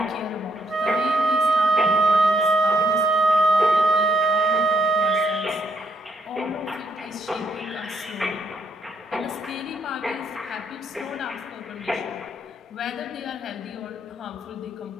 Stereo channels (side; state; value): both; normal; correlation 0.74